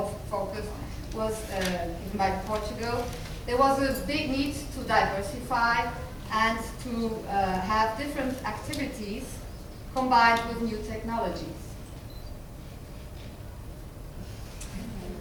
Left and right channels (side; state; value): both; identical; correlation 1.00